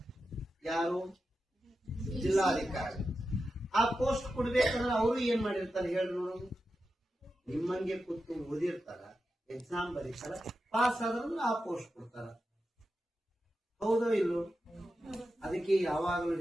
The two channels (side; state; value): both; normal; correlation 0.91